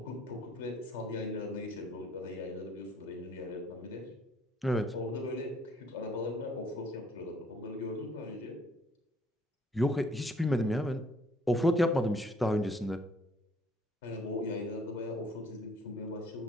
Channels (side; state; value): both; normal; correlation 0.62